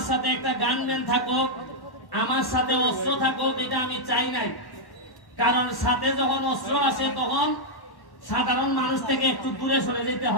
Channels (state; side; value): late; right; 1.1 ms